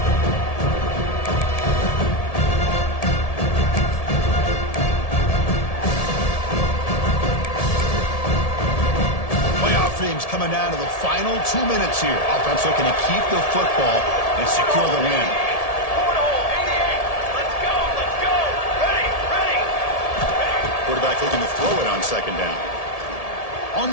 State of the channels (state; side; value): late; right; 1.7 ms